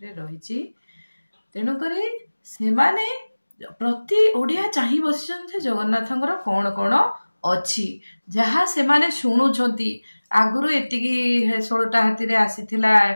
रहिछि। तेणु करी से माने प्रति ओडिया चाहि बसिचंते जगन्नाथंकर कोन कोन अछि जहा से माने सुनुछंती। आगुरु एतिकी 16टा हाथी रे आसीथिला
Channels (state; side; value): inverted; both; correlation -1.00